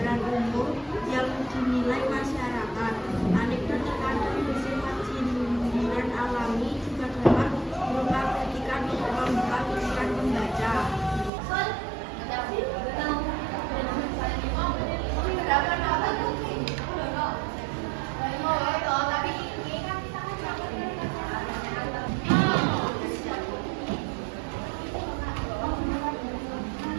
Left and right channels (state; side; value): drops out; left; at 11.3 s